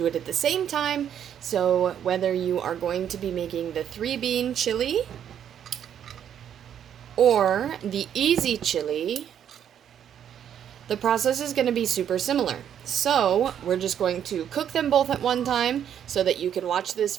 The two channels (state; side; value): quieter; left; 9.3 dB